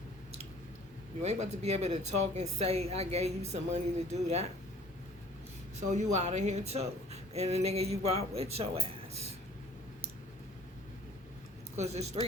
You ain't about to be able to talk and say, I gave you some money to do that. So you out of here too. And the nigga you brought with your ass. Because there's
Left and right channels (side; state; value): both; normal; correlation 0.53